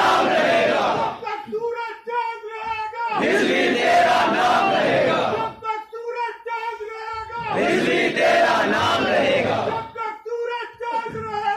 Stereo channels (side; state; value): both; identical; correlation 1.00